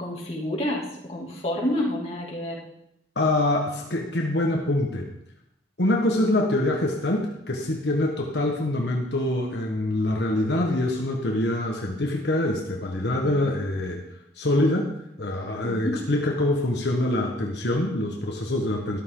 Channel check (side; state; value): both; normal; correlation 0.55